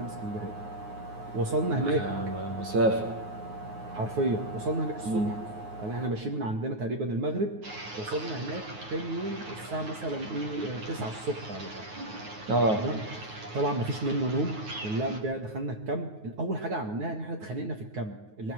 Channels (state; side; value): late; left; 9.4 ms